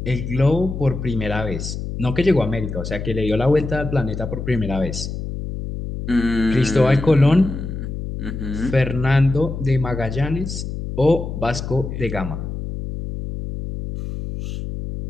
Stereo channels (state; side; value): noise; left; hum, 6 dB below the sound